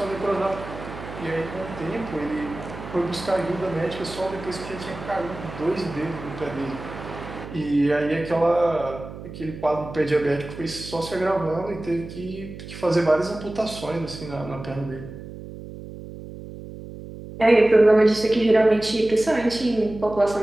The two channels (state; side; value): noise; right; hum, 12 dB below the sound